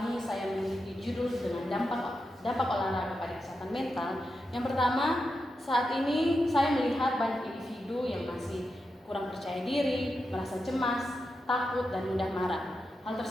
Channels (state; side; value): normal; both; correlation 0.88